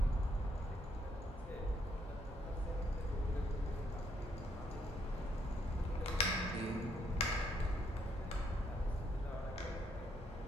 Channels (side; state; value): both; normal; correlation 0.72